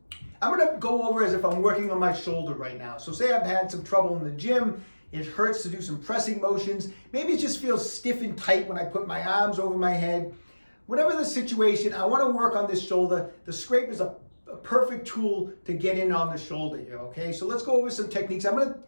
I'm gonna go over as if I'm working on my shoulder right now. So say I've had some trouble in the gym, it hurts to do some pressing motions, maybe it just feels stiff and tight when I put my arms over my head. Whatever the situation, I wanna work on this shoulder. The scrape is a perfect tool to get in on the shoulder here, okay? So let's go over some techniques. I'm gonna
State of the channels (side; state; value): both; inverted; correlation -1.00